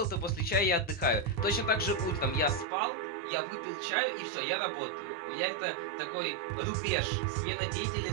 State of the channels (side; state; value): left; drops out; at 2.7 s